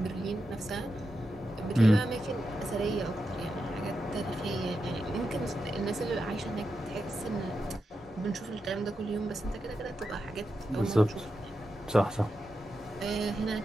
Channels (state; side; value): normal; both; correlation 0.88